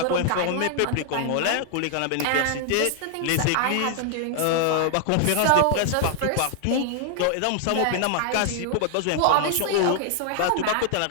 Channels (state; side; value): different; both; correlation 0.00